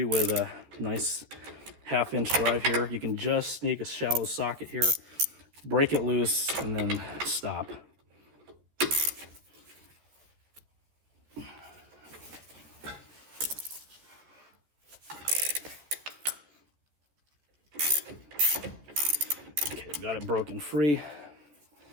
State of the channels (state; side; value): late; left; 14 ms